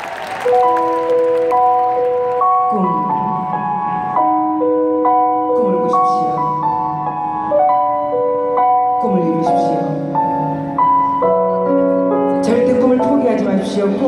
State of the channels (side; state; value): both; identical; correlation 1.00